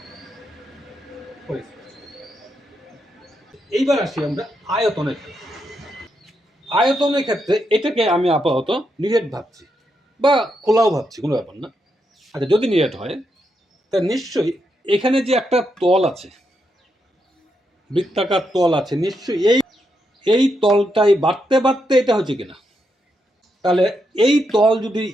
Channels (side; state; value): both; normal; correlation 0.82